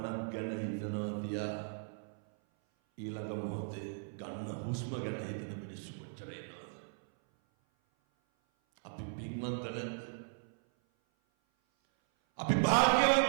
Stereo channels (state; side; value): silent; left; 53 dB below the other